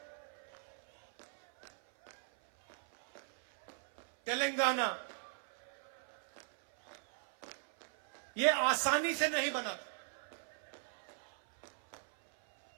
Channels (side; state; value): left; silent; 52 dB below the other